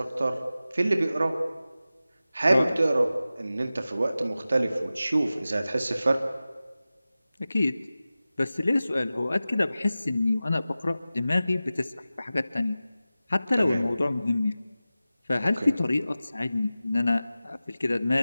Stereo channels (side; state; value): both; inverted; correlation -0.95